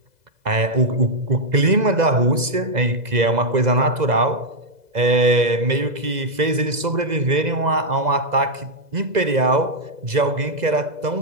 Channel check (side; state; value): left; late; 2.0 ms